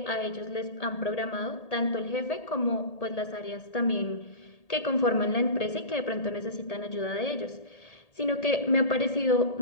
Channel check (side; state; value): right; late; 1.8 ms